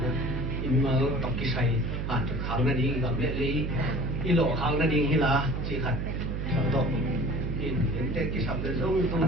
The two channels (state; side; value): noise; right; hum, 2 dB below the sound